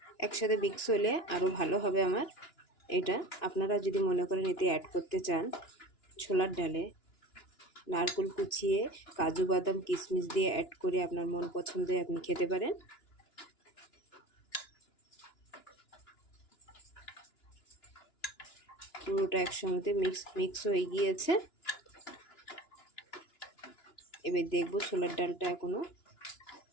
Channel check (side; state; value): right; late; 2.9 ms